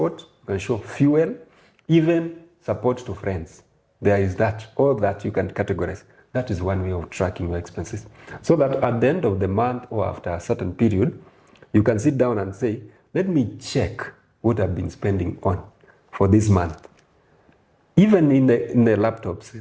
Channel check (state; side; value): identical; both; correlation 1.00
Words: you can show fuel, even support to friends. There is that, all that you can categorize. That is one way of tracking your expenses. So that at the end of the month or after a certain period, you can sit down and say, let me check what I've been spending on for this month. Even in the laptops,